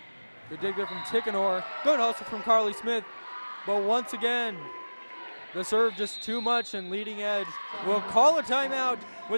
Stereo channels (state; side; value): inverted; both; correlation -1.00